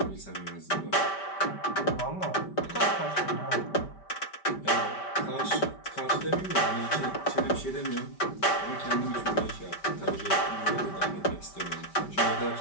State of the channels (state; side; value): late; right; 5.1 ms